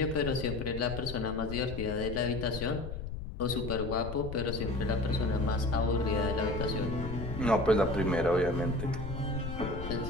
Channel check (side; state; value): left; noise; rumble, 7 dB below the sound